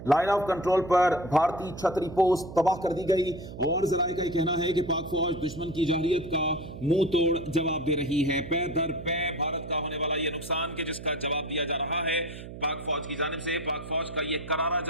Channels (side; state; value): right; noise; hum, 12 dB below the sound